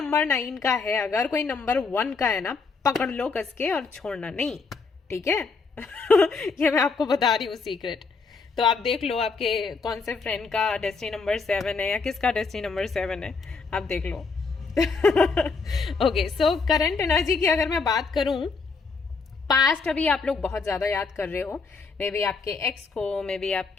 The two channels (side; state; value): right; quieter; 4.6 dB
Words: 9 का है, अगर कोई नंबर 1 का है ना, पकड़ लो कस के और छोड़ना नहीं, ठीक है। ये मैं आपको बता रही हूँ सीक्रेट। तो आप देख लो आपके कौन से फ्रेंड का डेस्टिनी नंबर 7 है या किसका डेस्टिनी नंबर 7 है, आप देख लो। ओके, सो करंट एनर्जी की अगर मैं बात करूं, पास्ट अभी आप लोग बहुत ज्यादा याद कर रहे हो। मे बी आपके एक्स को, मे बी